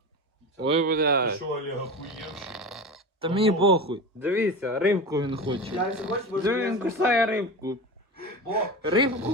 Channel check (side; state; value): both; normal; correlation 0.27